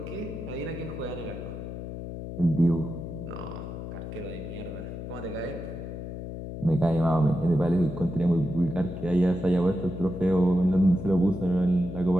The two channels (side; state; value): left; noise; hum, 8 dB below the sound